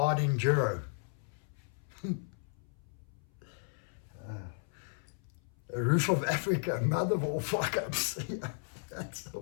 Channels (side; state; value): right; silent; 54 dB below the other